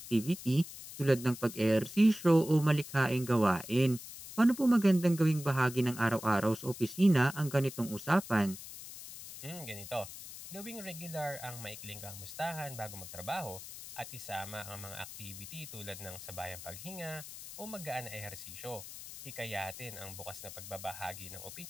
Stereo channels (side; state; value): left; noise; hiss, 12 dB below the sound